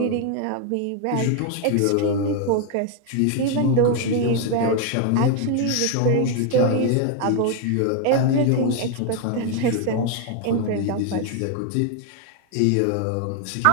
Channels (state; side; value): different; both; correlation 0.00